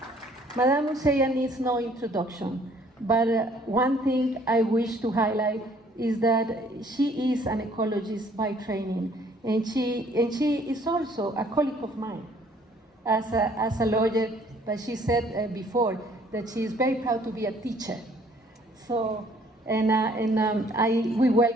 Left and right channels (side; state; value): both; normal; correlation 0.60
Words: Madame Museya needs no introduction, but one thing I wish to highlight is that she is an ecologist by training, and she is also a colleague of mine as a lawyer, but she said before that she is very proud to be a teacher. So, we